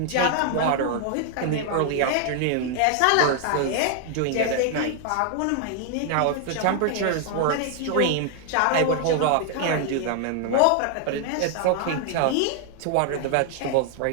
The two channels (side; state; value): both; different; correlation 0.00